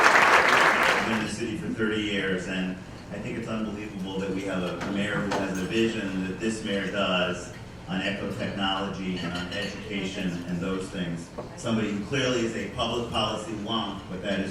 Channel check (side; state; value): both; identical; correlation 1.00